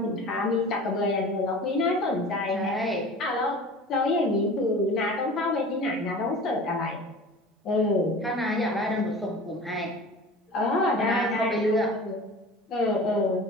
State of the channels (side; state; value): both; normal; correlation 0.39